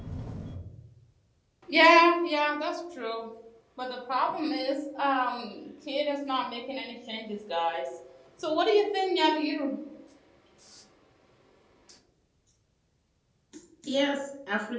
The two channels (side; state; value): both; identical; correlation 1.00